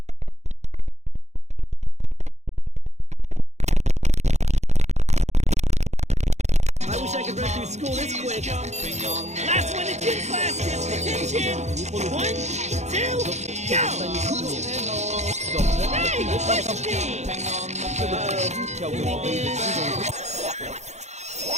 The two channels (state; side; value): late; left; 0.33 ms